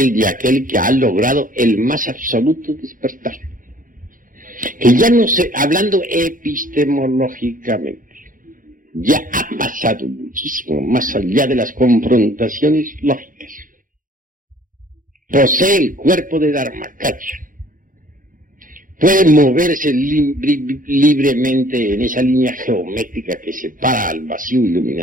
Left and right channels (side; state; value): left; late; 0.40 ms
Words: de aquel que ha logrado el más absoluto despertar. Que ya no sé, hablando epistemológicamente, ya ha pasado muchísimo más allá de las confrontaciones lógicas. Posee el cuerpo de Dharmakaya. Puede moverse libremente en esa línea geométrica que separa al vacío